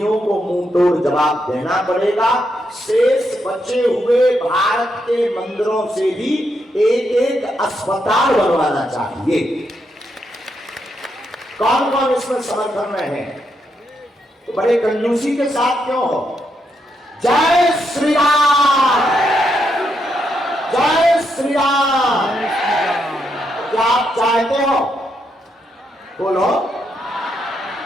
को मुंह तोड़ जवाब देना पड़ेगा। शेष बचे हुए भारत के मंदिरों से भी एक अस्पताल बनवाना चाहिए। कौन कौन इसमें समर्थन में है? तो बड़े कंजूसी के साथ क्यों हो? जय श्री राम, जय श्री राम। क्या आप चाहते हो? बोलो।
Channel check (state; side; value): normal; both; correlation 0.80